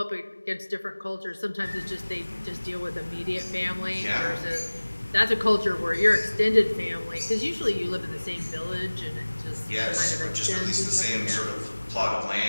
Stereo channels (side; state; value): both; inverted; correlation -1.00